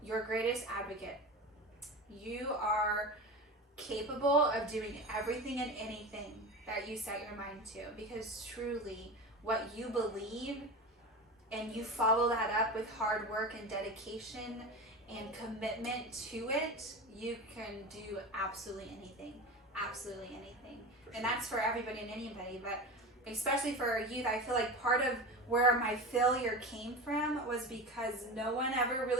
your greatest advocate. You are capable of doing everything and anything that you set your mind to, because truly what you believe and you follow that up with hard work and dedication and commitment to it, you can do absolutely anything. And that's for everybody and anybody, but especially for our youth. I feel like part of where my failure came from was because no one ever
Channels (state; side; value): normal; both; correlation 0.28